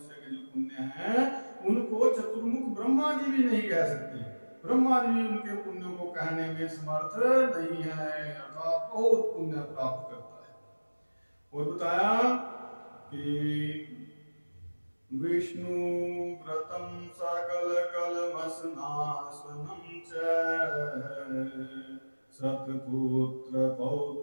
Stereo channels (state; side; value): inverted; both; correlation -1.00